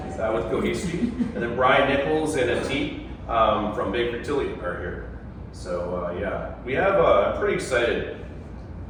with Cohesity. And then Brian Nichols and Ateet from Baker Tilly are here. So yeah, we have, I'm pretty excited.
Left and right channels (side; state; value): both; identical; correlation 1.00